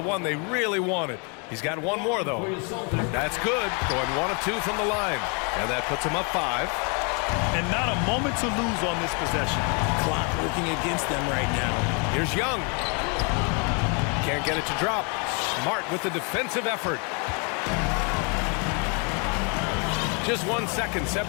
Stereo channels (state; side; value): quieter; right; 35.7 dB